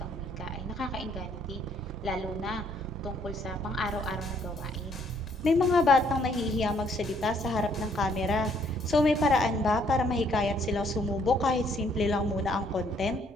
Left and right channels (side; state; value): both; normal; correlation 0.66